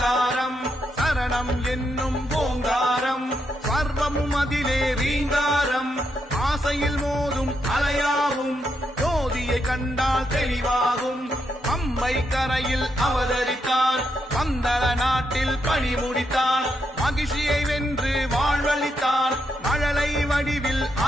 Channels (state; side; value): normal; both; correlation 0.81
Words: சரணம் என்னும் ஓங்காரம், சர்வமும் அதிலே ரீங்காரம், ஆசையில் மோதும் அலையாகும், ஜோதியை கண்டால் தெளிவாகும், பம்பை கரையில் அவதரித்தான், பந்தள நாட்டில் பணி முடித்தான், மகிழ்ச்சியை வென்று வாழ்வளித்தான், மழலை வடிவில்